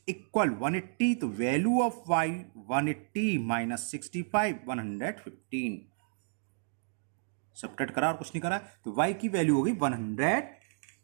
इक्वल 180, तो वैल्यू ऑफ y 180 - 65 115। सबट्रैक्ट करा और कुछ नहीं करा, तो y की वैल्यू हो गई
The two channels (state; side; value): silent; left; digital silence